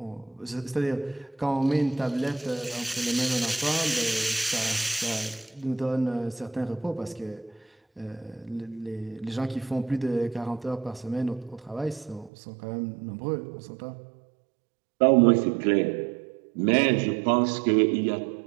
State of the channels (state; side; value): drops out; left; at 12.3 s